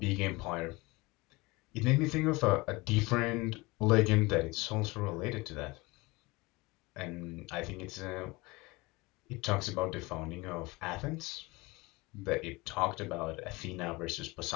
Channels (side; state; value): right; quieter; 23.4 dB